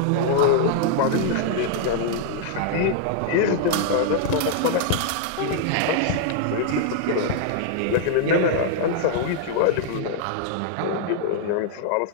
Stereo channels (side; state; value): both; different; correlation -0.01